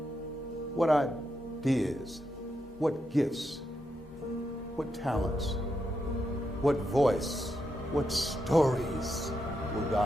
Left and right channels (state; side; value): normal; both; correlation 0.83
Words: what ideas, what gifts, what talents, what voice, what stories will